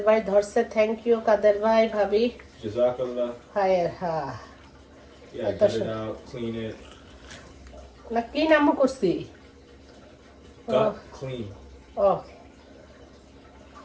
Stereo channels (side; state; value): both; identical; correlation 1.00